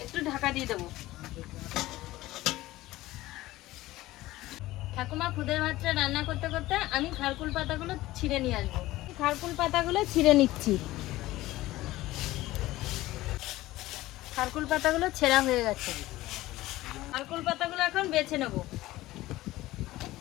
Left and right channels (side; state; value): right; quieter; 17.2 dB